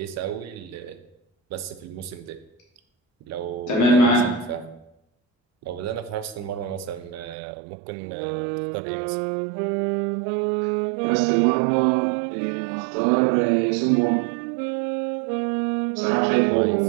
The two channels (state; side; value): drops out; left; at 7.4 s